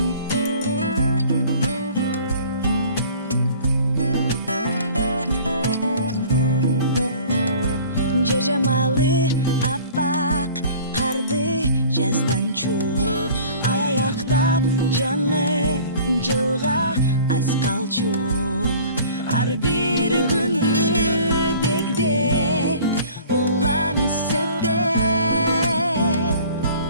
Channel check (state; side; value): inverted; both; correlation -0.47